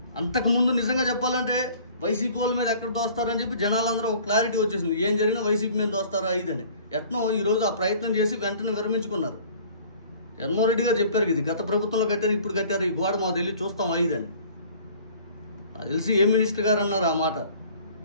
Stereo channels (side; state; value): both; inverted; correlation -0.50